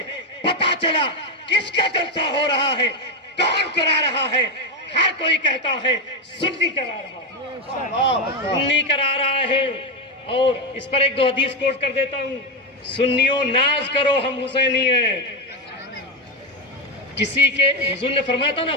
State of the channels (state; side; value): normal; both; correlation 0.10